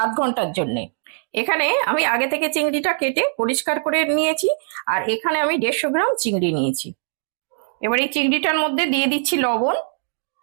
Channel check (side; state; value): left; silent; digital silence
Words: আধ ঘন্টার জন্য। এখানে আমি আগে থেকে চিংড়িটা কেটে পরিষ্কার করে নিয়েছি, আর এখানে আমি 150 গ্রাম চিংড়ি নিয়েছি। এবার এই চিংড়িটার মধ্যে দিয়ে দিচ্ছি লবণ,